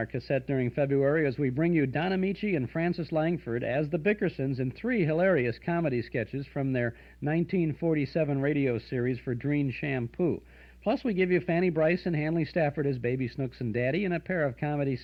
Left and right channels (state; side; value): identical; both; correlation 1.00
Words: cassette during February as we bring you Don Amici and Francis Langford as the Bickersons in 3 hilarious comedy sketches from their 1947 radio series for Dreen Shampoo. Plus, we give you Fanny Bryce and Hanley Stafford as Baby Snooks and Daddy and a pair of comedy